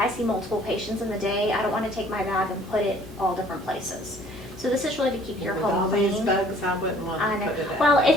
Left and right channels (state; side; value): normal; both; correlation 0.56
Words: I see multiple patients in the day, I don't want to take my bag and put it all different places. So this is really to keep your With home all clean. these bugs, I wouldn't want I to know. put it out. Well,